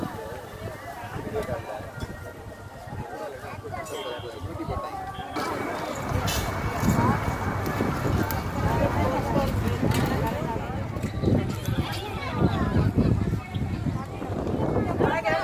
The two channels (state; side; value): identical; both; correlation 1.00